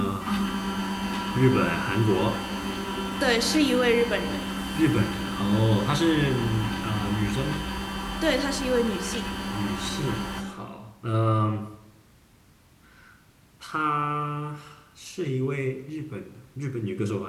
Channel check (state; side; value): identical; both; correlation 1.00